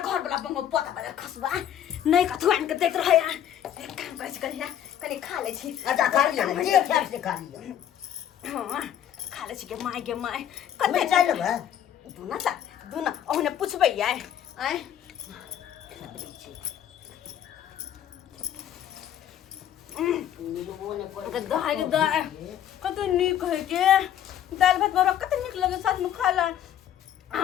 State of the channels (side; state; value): right; quieter; 10.4 dB